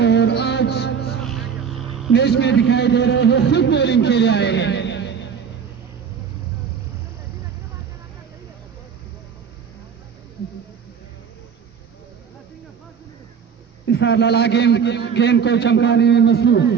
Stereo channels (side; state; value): left; quieter; 6.9 dB